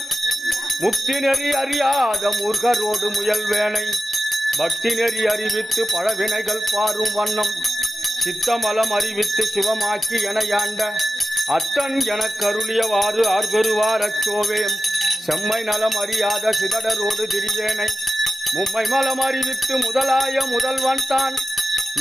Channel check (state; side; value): normal; both; correlation 0.92